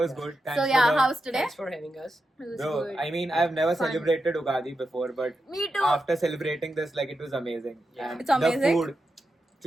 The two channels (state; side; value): normal; both; correlation 0.88